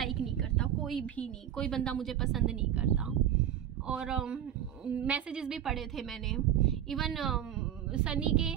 नहीं करता, कोई भी नहीं, कोई बंदा मुझे पसंद नहीं करता। और मैसेजेस भी पढ़े थे मैंने। इवन सनी के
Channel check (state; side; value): quieter; left; 10.6 dB